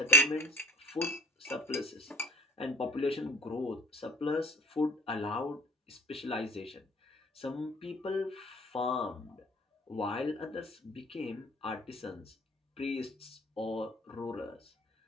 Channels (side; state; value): both; normal; correlation 0.54